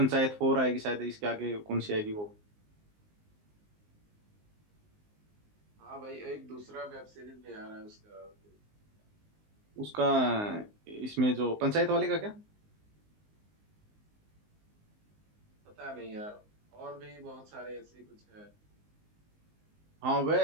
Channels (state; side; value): late; left; 19 ms